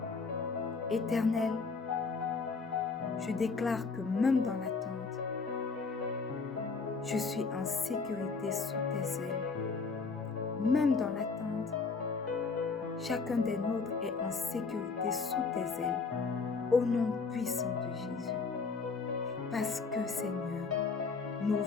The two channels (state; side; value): quieter; right; 4.6 dB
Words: Éternel, je déclare que même dans l'attente, je suis en sécurité sous tes ailes. Même dans l'attente, chacun des nôtres est en sécurité sous tes ailes, au nom puissant de Jésus. Parce que, Seigneur, nos